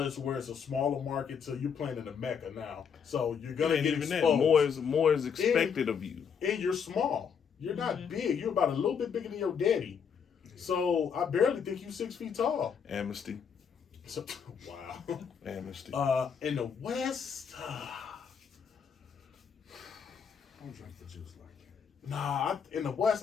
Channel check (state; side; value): quieter; right; 6.9 dB